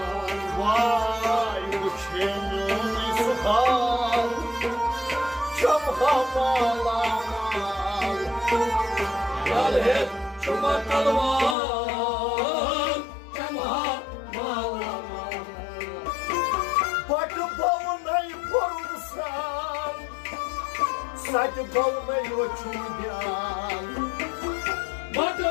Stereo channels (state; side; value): drops out; right; at 11.6 s